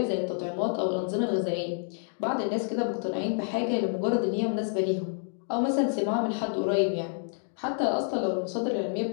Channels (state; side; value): silent; right; 59 dB below the other